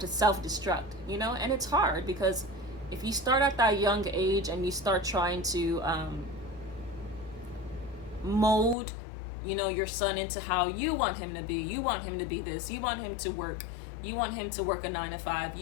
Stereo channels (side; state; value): right; drops out; at 8.8 s